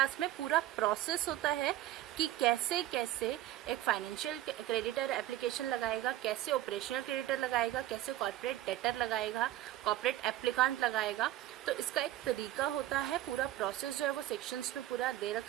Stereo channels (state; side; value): quieter; left; 14.3 dB